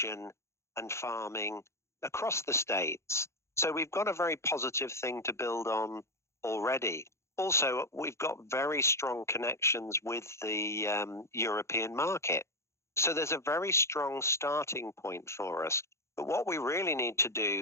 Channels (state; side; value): late; right; 0.13 ms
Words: and farming across the states. So we've got a very positive thing to build on already. Also, we've got very strong connections with the European market. So there's a very strong starting point for us. But what we really need to